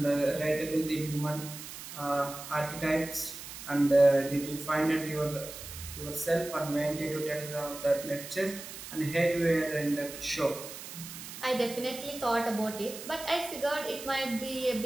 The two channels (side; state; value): right; noise; hiss, 11 dB below the sound